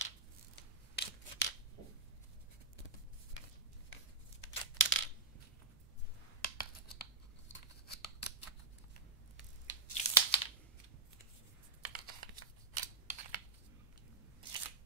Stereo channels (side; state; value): left; quieter; 3.6 dB